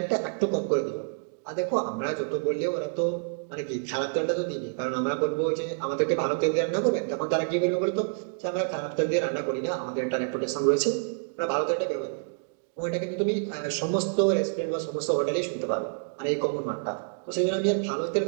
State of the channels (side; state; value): left; silent; digital silence